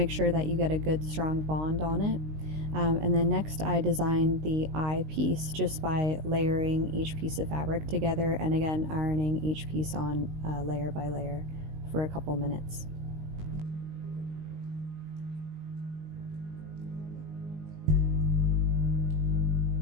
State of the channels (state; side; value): late; left; 19 ms